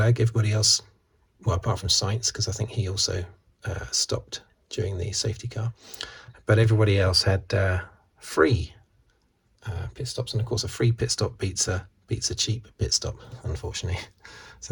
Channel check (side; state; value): both; identical; correlation 1.00